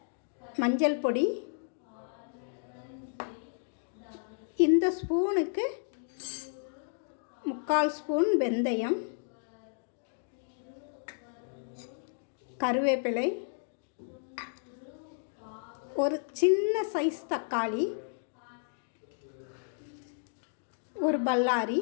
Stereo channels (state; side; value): silent; right; digital silence